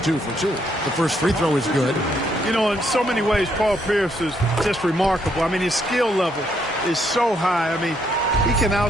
2 for 2. The first free throw is good. You know, in so many ways, Paul Pierce is just remarkable. I mean, his skill level is so high. I mean, he can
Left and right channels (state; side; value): normal; both; correlation 0.73